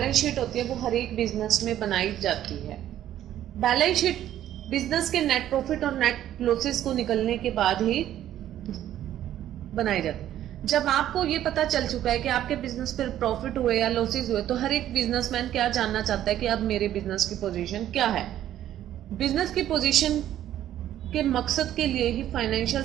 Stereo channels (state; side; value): quieter; left; 12.0 dB